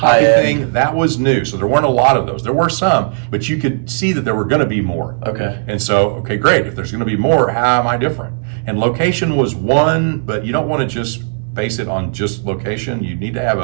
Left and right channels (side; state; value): left; silent; 69 dB below the other